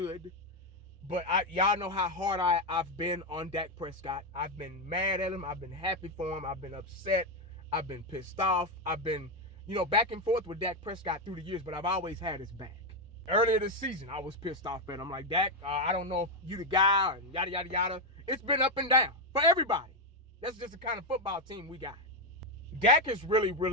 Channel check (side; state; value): both; normal; correlation 0.05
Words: but y'all know how hard I've been on Dak Prescott. I've been mad at him. I've been happy for him. I've been upset. I've been pissed off. I've been, back and forth with Dak Prescott through the years, but I've always had his back. Earlier this season, I was pissed off at him. I'm like, Dak, I don't know if you the guy, and yada, yada, yada. It's been up and down for everybody. That's just the kind of football team we got. Dak is really,